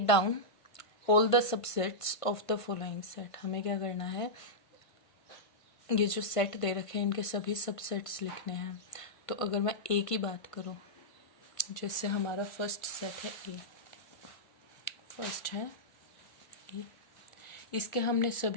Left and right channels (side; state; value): right; late; 1.5 ms